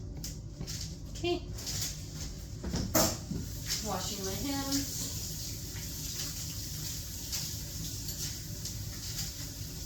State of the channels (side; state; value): both; identical; correlation 1.00